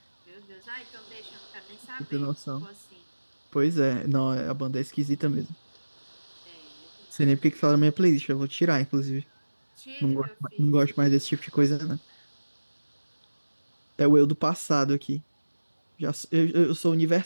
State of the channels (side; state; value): both; inverted; correlation -1.00